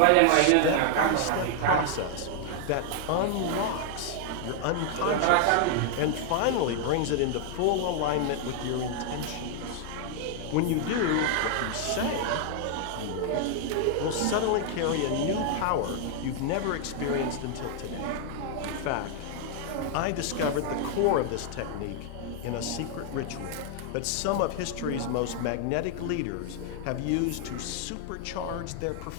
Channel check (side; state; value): both; different; correlation 0.00